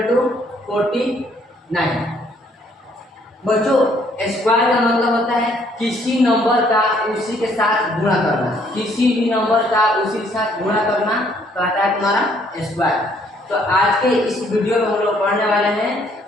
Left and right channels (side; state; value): both; normal; correlation 0.65